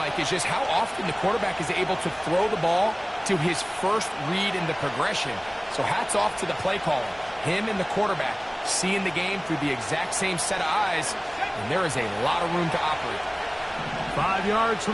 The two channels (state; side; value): identical; both; correlation 1.00